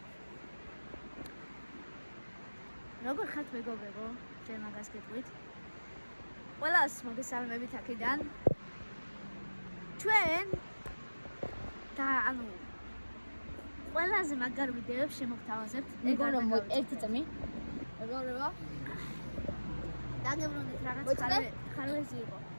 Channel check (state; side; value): inverted; both; correlation -1.00